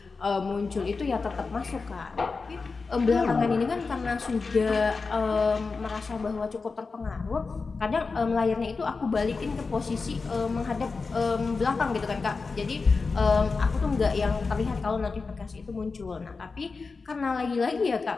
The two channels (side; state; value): right; quieter; 4.4 dB